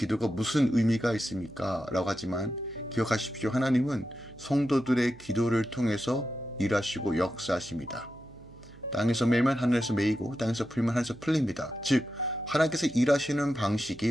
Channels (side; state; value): right; noise; hum, 22 dB below the sound